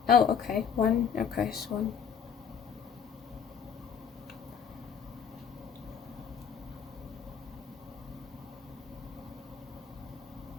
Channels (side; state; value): right; quieter; 7.0 dB